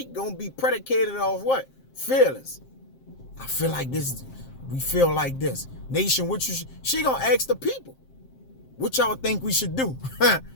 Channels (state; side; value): late; right; 7.6 ms